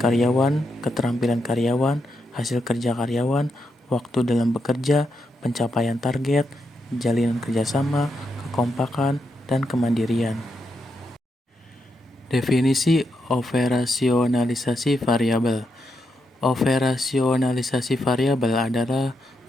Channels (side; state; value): both; normal; correlation 0.83